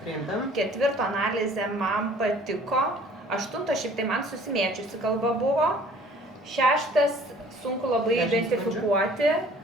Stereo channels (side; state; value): both; normal; correlation 0.53